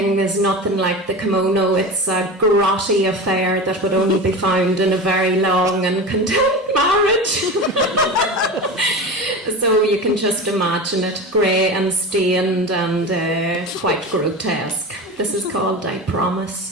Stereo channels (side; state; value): both; normal; correlation 0.28